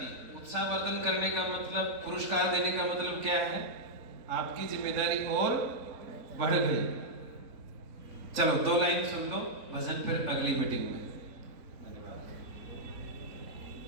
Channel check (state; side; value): late; left; 3.9 ms